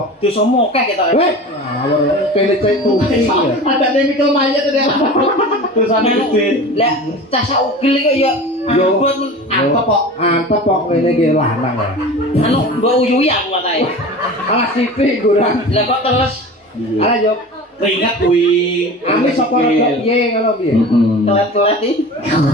Dosa mokeh kita. Weh, ngawur pilih cek tuh. Ada chemical mayat ada. Dosane gede. Lah, cah ugil kok ya Yo. buat Apa kok? Antep kok ngene iki lanang ya. anu mbok uyuhi aku katae. Alah sithik gurang. Lah kok terus Alah yo. Keringat kuwi. Ami sapa rada piye ngono piye? telat-telat iki.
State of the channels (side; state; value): both; normal; correlation 0.35